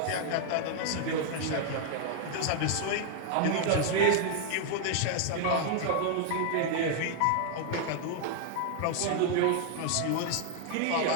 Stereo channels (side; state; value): both; different; correlation 0.00